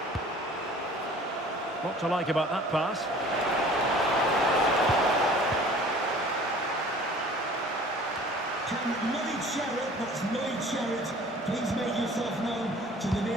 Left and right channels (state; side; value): normal; both; correlation 0.48